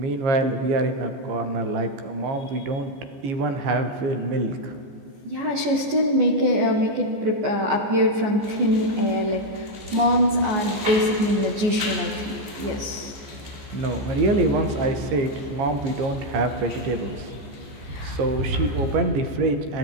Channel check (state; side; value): late; left; 14 ms